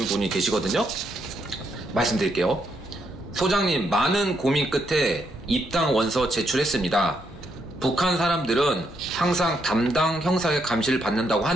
분이 계시거든요. 말씀드릴게요. 소장님, 많은 고민 끝에 입당 원서 제출했습니다. 북한 사람들은 항상 담당 형사의 감시를 받는다고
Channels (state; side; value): normal; both; correlation 0.77